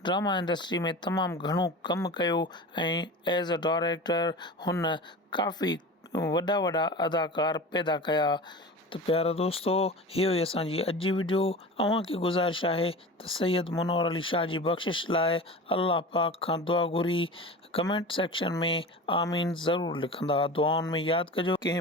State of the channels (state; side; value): normal; both; correlation 0.33